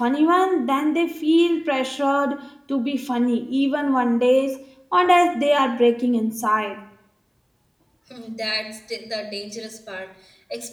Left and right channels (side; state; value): both; identical; correlation 1.00